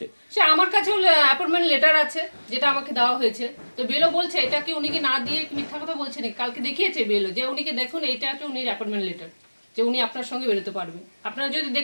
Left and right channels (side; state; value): both; inverted; correlation -1.00